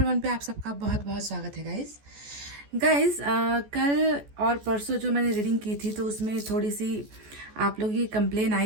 वन पे आप सबका बहुत बहुत स्वागत है गाइस। कल और परसों जो मैंने रीडिंग की थी तो उसमें थोड़ी सी आप लोगों की कंप्लेन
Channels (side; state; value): left; late; 14 ms